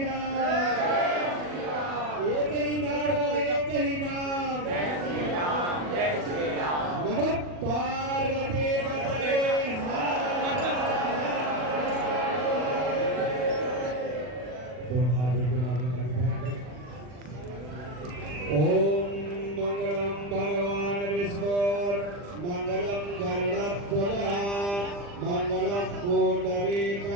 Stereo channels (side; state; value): left; late; 40 ms